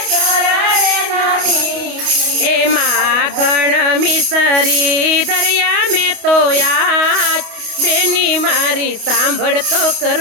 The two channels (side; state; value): left; late; 28 ms